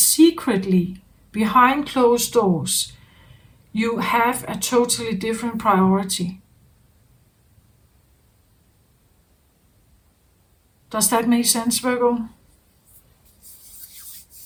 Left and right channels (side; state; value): both; identical; correlation 1.00